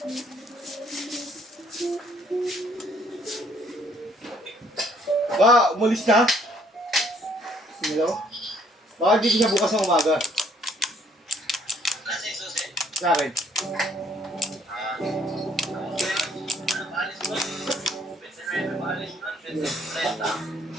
Ba, umalis na? Hello? Baka dito siya bukas ng umaga. Sa akin.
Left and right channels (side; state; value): both; normal; correlation 0.64